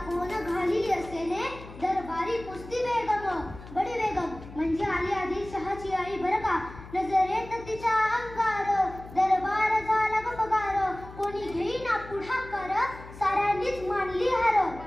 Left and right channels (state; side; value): noise; left; hum, 16 dB below the sound